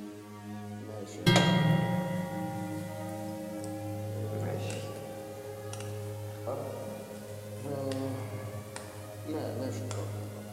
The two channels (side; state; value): both; identical; correlation 1.00